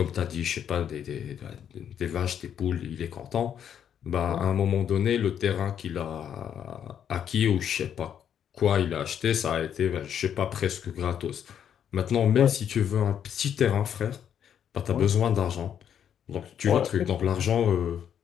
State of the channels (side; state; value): right; quieter; 9.0 dB